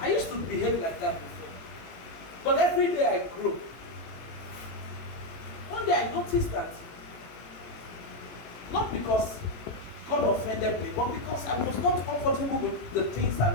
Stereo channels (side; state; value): right; late; 18 ms